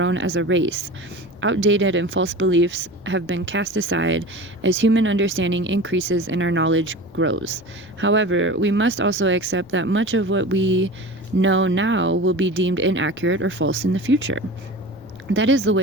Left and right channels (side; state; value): left; noise; rumble, 26 dB below the sound